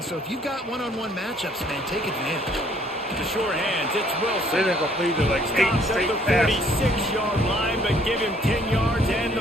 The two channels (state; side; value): normal; both; correlation 0.62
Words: so if you've got one-on-one matchups, man, take advantage. The short hands, it's They Wilson. didn't complete it like 8 Stops at straight the passes. 46-yard line, but give him 10 yards and the